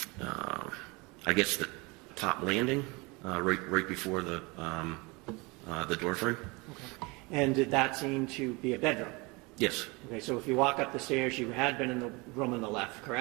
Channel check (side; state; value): left; quieter; 26.5 dB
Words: I guess the top landing, right before the door frame. Okay. And did that seem to be a bedroom? Yes. Okay, so if you walk up the stairs, you had been in the room on the left,